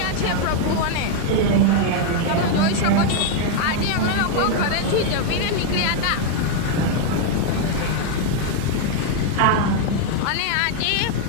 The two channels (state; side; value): different; both; correlation 0.00